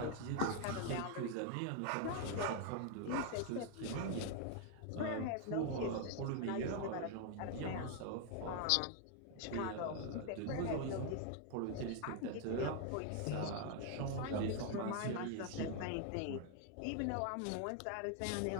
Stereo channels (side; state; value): both; different; correlation 0.00